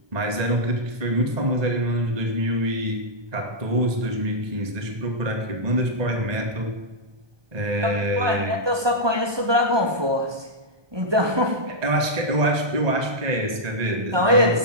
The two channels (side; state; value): left; late; 1.2 ms